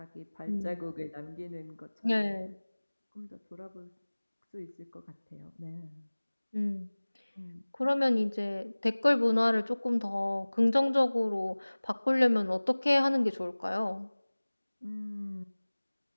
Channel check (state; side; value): inverted; both; correlation -1.00